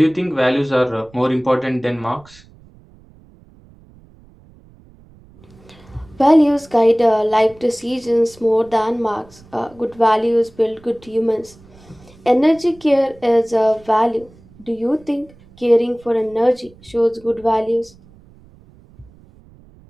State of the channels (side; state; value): right; noise; rumble, 26 dB below the sound